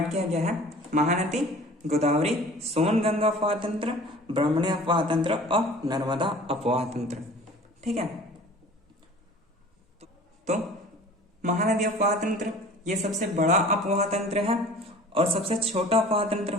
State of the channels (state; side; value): normal; both; correlation 0.45